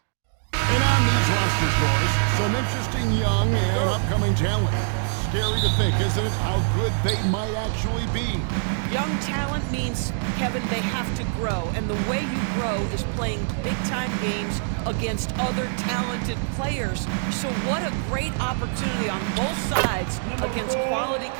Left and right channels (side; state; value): left; silent; digital silence